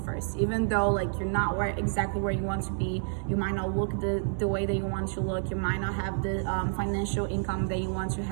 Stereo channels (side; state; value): left; silent; digital silence